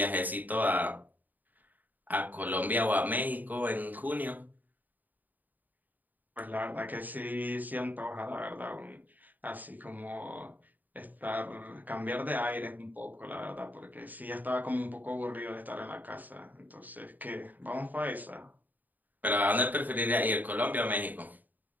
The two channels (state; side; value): late; left; 0.084 ms